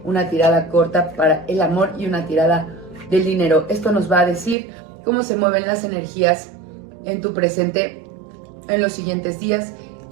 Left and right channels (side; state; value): left; drops out; at 4.5 s